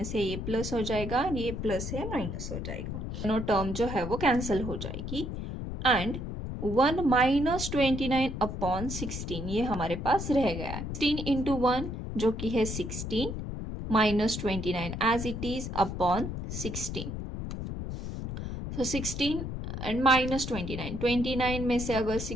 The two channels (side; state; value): left; noise; rumble, 6 dB below the sound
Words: है ये प्लस हो जाएगा, ये प्लस है माइनस हो जाएगा, दोनों टर्म जो है वो कैंसिल हो जाएगी एंड 1 माइनस 29 अपॉन 16 ये हमारे पास रह गया है। 16 इंटू 1 जो कि है 16 minus 29 as it is upon 16। सो 16 एंड माइनस 29, 29 में से अगर